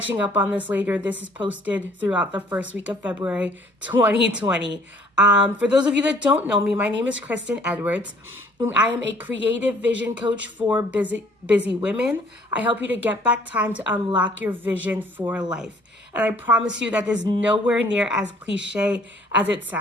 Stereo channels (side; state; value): both; normal; correlation 0.58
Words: up on this later, this is posted throughout the first week of February 2020. For those of you that don't know me, my name is Kristen Edwards. I am a creative vision coach for busy women. I help you to get back time to unlock your vision for life. And I promise you that is nowhere near as cliche as it